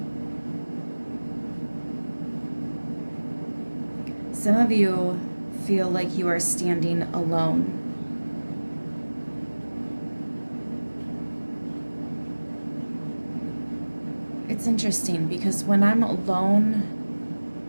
Some of you feel like you are standing alone. It's interesting because when I'm alone,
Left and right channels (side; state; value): both; inverted; correlation -1.00